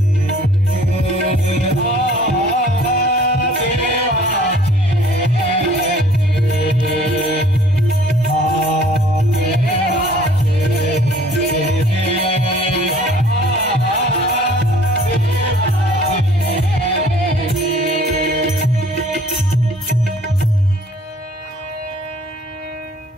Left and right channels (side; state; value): both; normal; correlation 0.54